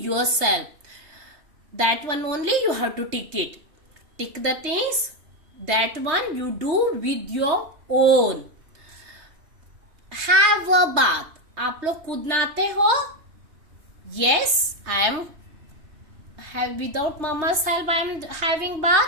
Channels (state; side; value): late; left; 3.2 ms